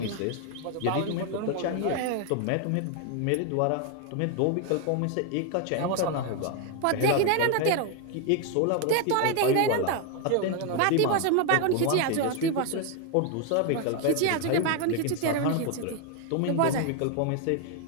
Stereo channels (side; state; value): both; different; correlation 0.01